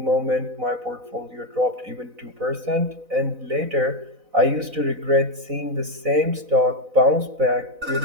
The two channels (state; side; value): late; left; 4.0 ms